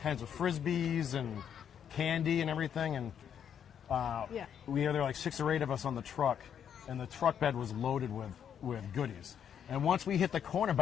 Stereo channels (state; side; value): quieter; right; 8.6 dB